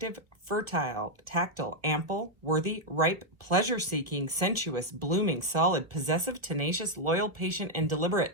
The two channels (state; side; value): late; left; 1.4 ms